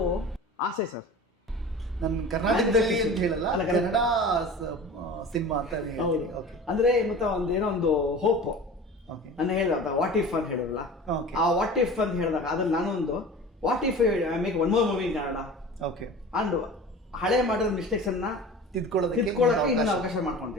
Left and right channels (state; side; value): normal; both; correlation 0.37